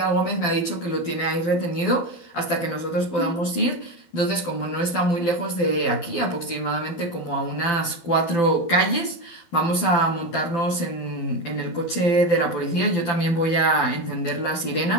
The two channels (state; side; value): late; right; 12 ms